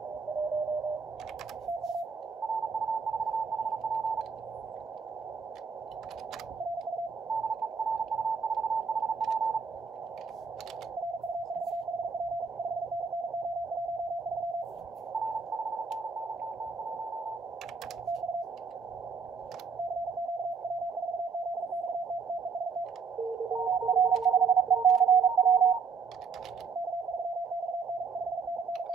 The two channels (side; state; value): left; quieter; 5.4 dB